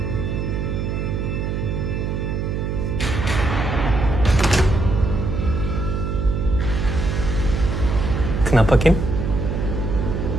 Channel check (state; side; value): noise; right; hum, 2 dB below the sound